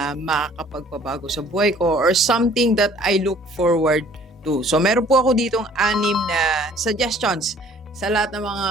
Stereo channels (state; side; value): normal; both; correlation 0.55